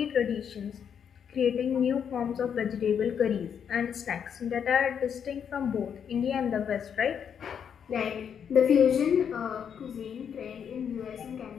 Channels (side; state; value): right; quieter; 7.8 dB